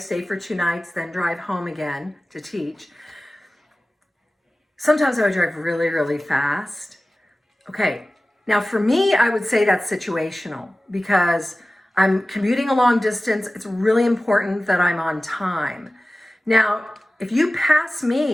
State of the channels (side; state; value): both; normal; correlation 0.96